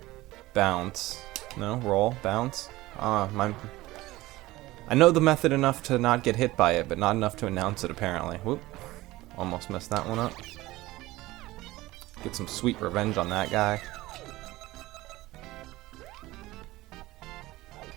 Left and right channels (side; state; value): left; quieter; 18.4 dB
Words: bounce. No, roll, bounce. I know the method enough to not get hit by it, but not enough to announce it, apparently. Whoop. Almost messed that one up. Get some sweet revenge on that guy.